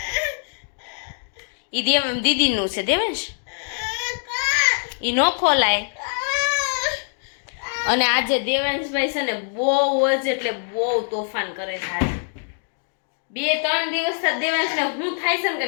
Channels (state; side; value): silent; right; digital silence